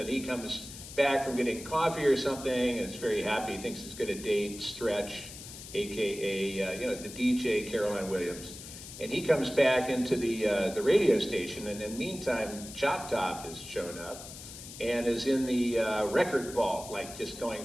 he comes back from getting coffee or something and is very happy. He thinks he's going to date Stretch, aka the DJ Caroline Williams, and he comes back into the radio station, and in the meantime Chop Top has shown up and is in the record vault, like just going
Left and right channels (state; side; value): noise; left; hiss, 13 dB below the sound